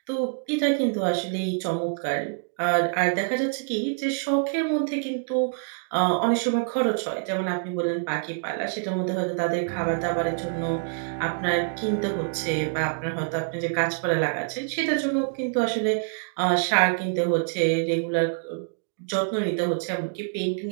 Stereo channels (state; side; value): silent; left; digital silence